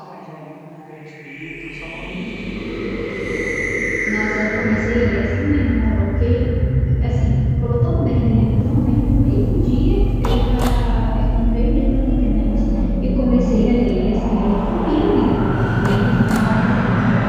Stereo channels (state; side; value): identical; both; correlation 1.00